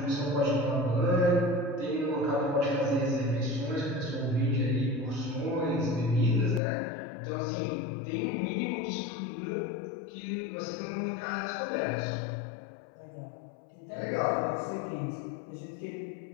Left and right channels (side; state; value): right; drops out; at 6.6 s